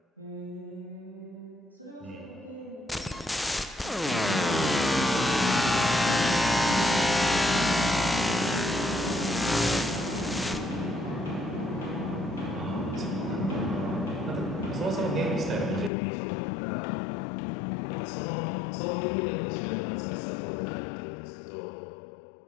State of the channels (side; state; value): right; drops out; at 15.9 s